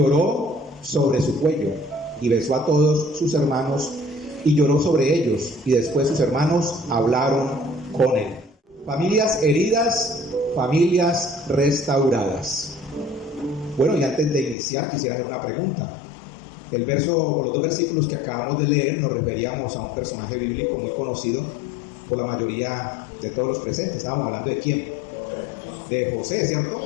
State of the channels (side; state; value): right; drops out; at 14.6 s